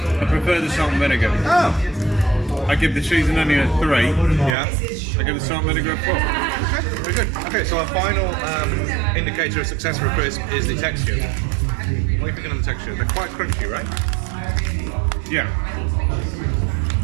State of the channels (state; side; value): drops out; left; at 4.5 s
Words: I prefer the salt and vinegar. Oh, I give the cheese and onion a 3. yeah. I give the salt and vinegar a 4. Okay, very good. Okay, so our final indicator of success for a crisp is the texture. What are you thinking of the texture? They're quite crunchy, right? Yeah.